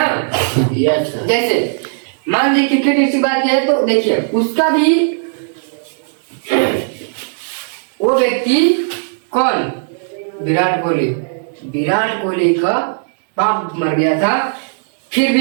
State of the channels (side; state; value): left; silent; digital silence